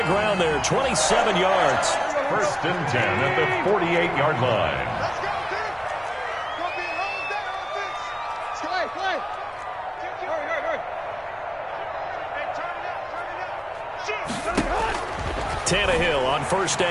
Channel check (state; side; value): identical; both; correlation 1.00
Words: ground there, 27 yards. First and 10 at the 48-yard line. Tannehill on first